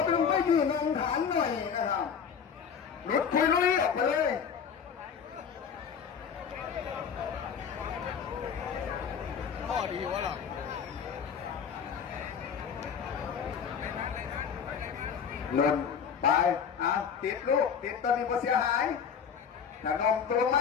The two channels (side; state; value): right; quieter; 7.1 dB